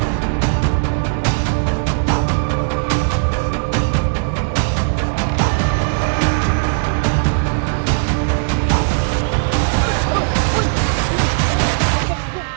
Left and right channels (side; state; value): left; silent; 68 dB below the other